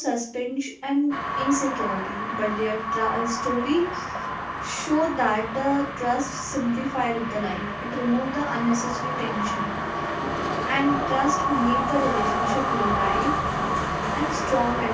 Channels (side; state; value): both; identical; correlation 1.00